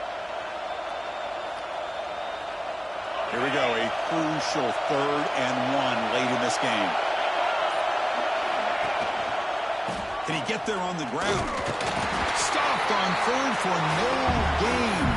this game. Can he get there on the ground? Stopped on third for no gain.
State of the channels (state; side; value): identical; both; correlation 1.00